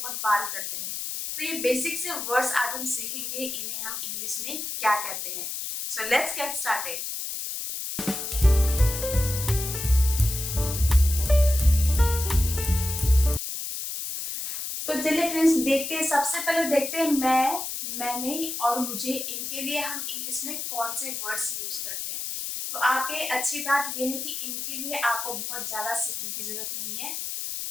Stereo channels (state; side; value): noise; left; hiss, 5 dB below the sound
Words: बार करते हैं। तो ये बेसिक से वर्ड्स आज हम सीखेंगे, इन्हें हम इंग्लिश में क्या कहते हैं। So let's get started. तो चलिए फ्रेंड्स, देखते हैं। सबसे पहले देखते हैं मैंने और मुझे, इनके लिए हम इंग्लिश में कौन से वर्ड्स यूज करते हैं। तो आपके अच्छी बात यह है कि इनके लिए आपको बहुत ज्यादा सीखने की जरूरत नहीं है।